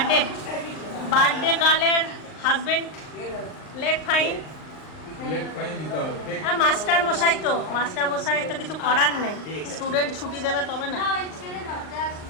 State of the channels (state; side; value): late; right; 39 ms